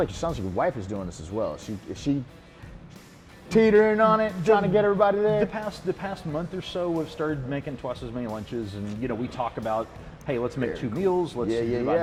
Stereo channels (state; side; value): identical; both; correlation 1.00